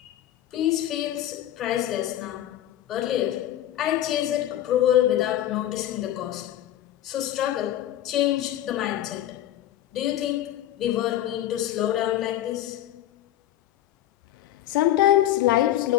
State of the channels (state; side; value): quieter; right; 12.8 dB